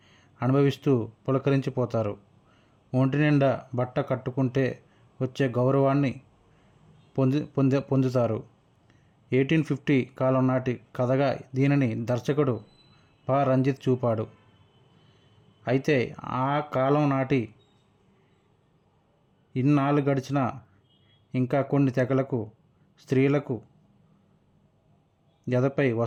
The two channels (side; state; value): both; identical; correlation 1.00